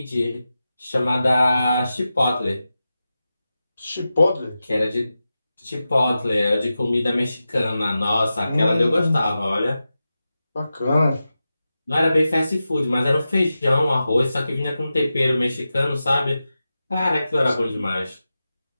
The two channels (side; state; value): both; inverted; correlation -0.92